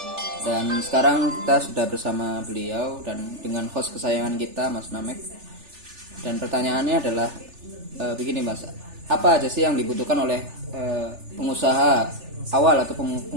Dan sekarang kita sudah bersama beliau dan dengan host kesayangan kita, Mas Namek. Dan pertanyaannya adalah begini, Mas, apa aja sih yang dibutuhkan oleh pengusaha awal atau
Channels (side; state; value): left; late; 3.4 ms